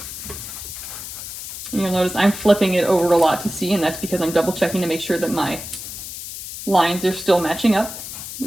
And you'll notice I'm flipping it over a lot to see, and that's because I'm double checking to make sure that my lines are still matching up,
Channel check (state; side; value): noise; left; hiss, 9 dB below the sound